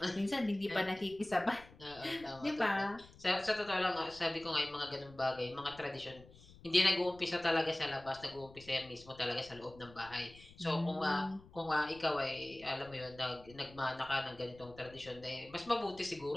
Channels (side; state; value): left; noise; rumble, 21 dB below the sound